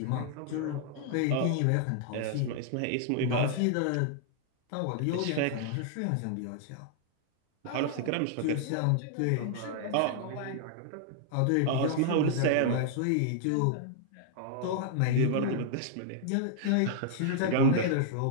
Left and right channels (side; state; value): both; different; correlation -0.01